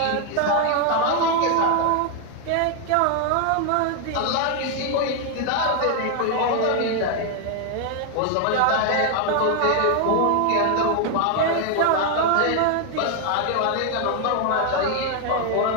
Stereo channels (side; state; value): both; different; correlation 0.01